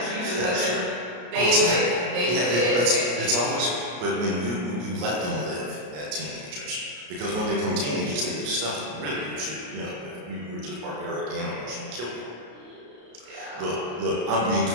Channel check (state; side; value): late; left; 33 ms